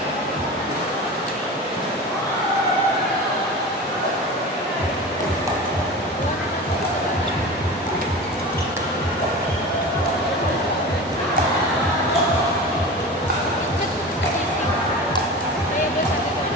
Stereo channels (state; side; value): normal; both; correlation 0.31